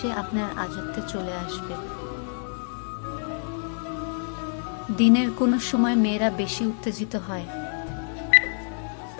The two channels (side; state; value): right; silent; digital silence